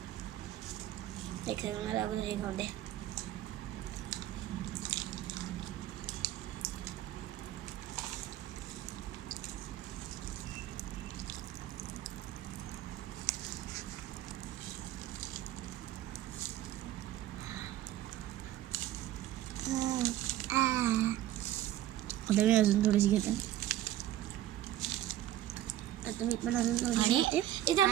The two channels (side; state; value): left; quieter; 13.3 dB